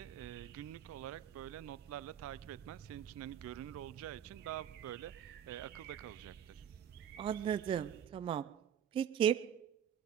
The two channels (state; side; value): quieter; left; 9.3 dB